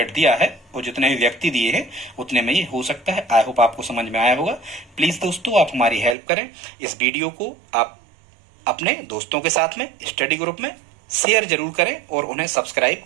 दिया है और जितने भी व्यक्ति दिए हैं उतने में ये हो सकता है। आई होप आपको समझ में आया होगा। प्लीज दोस्तों आप हमारी हेल्प करें, इस वीडियो को आप अपने दोस्तों के साथ में स्टडी ग्रुप में शेयर जरूर करें और उन्हें सब्सक्राइब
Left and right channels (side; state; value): left; drops out; at 6.2 s